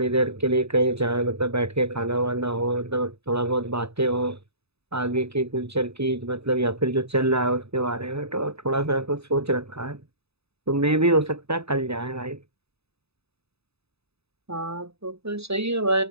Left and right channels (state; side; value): late; left; 0.79 ms